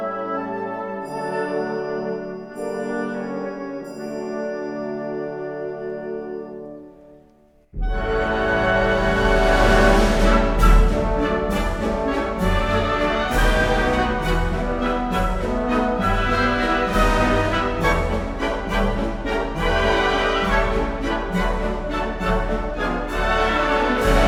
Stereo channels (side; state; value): both; identical; correlation 1.00